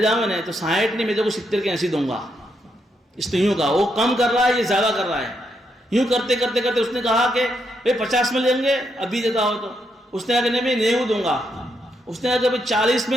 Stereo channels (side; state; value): both; normal; correlation 0.79